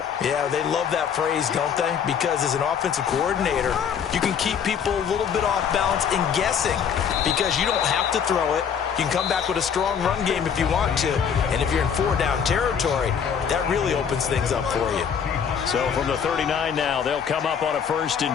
Yeah, they love that phrase, don't they? Because as an offensive coordinator, you can keep people a little bit off balance and guessing because you don't have to throw it. You can come back with a strong run game if you want to. And if you're in four-down territory, that really opens things up for you. So from the 39 now, they'll come up on a 1st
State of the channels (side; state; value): right; quieter; 7.5 dB